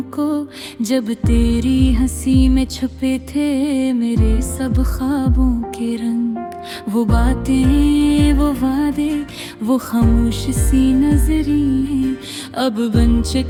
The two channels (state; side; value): identical; both; correlation 1.00